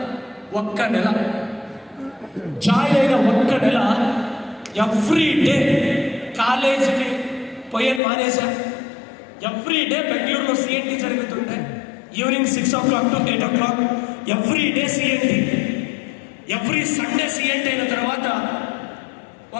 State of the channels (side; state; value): right; drops out; at 8.0 s